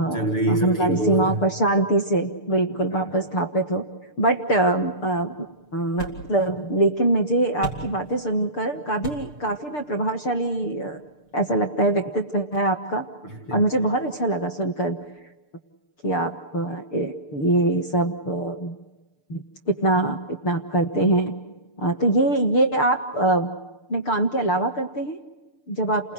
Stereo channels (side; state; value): right; late; 6.7 ms